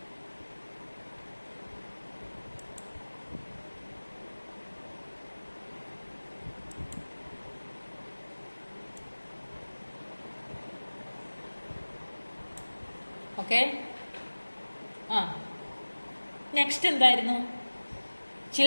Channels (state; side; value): inverted; both; correlation -1.00